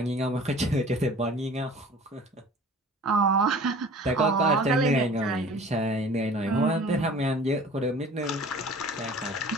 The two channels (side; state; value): both; normal; correlation 0.45